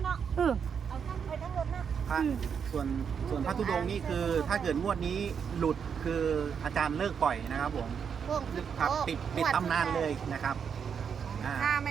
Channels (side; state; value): left; quieter; 7.0 dB